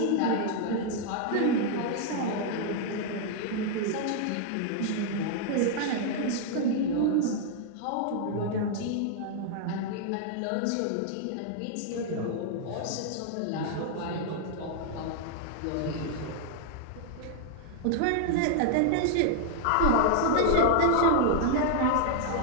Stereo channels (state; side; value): different; both; correlation 0.00